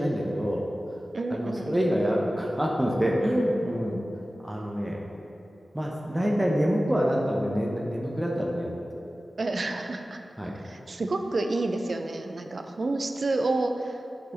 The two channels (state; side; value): normal; both; correlation 0.96